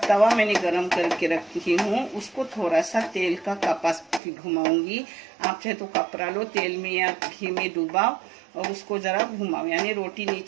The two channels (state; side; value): drops out; left; at 4.2 s